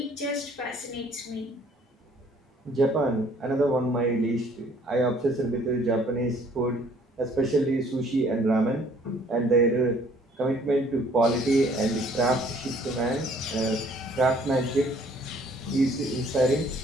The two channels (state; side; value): normal; both; correlation 0.59